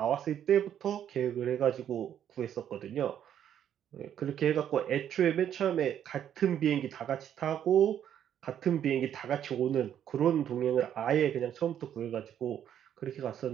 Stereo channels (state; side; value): quieter; left; 9.9 dB